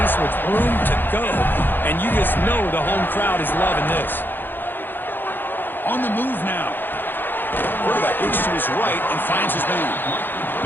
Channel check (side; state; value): right; late; 0.095 ms